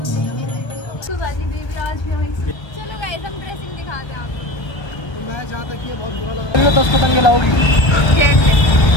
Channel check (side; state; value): right; late; 1.3 ms